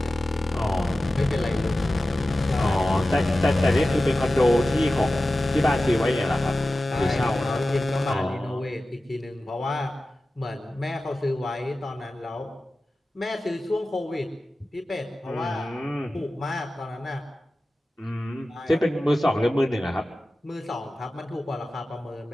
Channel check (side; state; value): both; normal; correlation 0.95